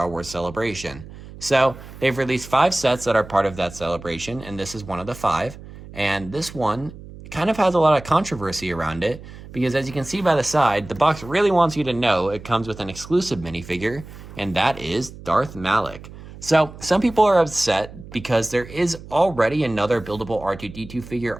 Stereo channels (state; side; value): noise; right; hum, 16 dB below the sound